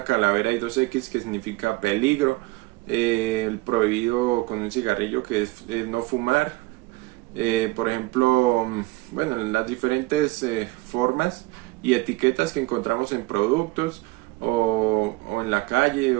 calavera y 2X que significa peligro, el prohibido con un cigarrillo que es no fumar. Por ejemplo, bueno, las diferentes formas y etiquetas que encontramos en productos o en la calle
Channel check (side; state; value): left; quieter; 21.3 dB